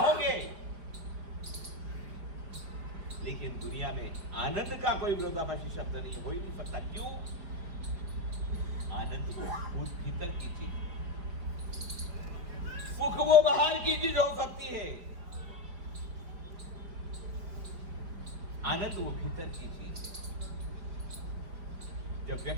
लेकिन दुनिया में आनंद का कोई विरोधाभासी शब्द नहीं हो ही नहीं सकता। क्यों? आनंद वो भीतर की चीज, सुख वो बाहर की चीज हो सकती है, आनंद वो भीतर की चीज है। जब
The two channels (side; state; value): left; late; 4.9 ms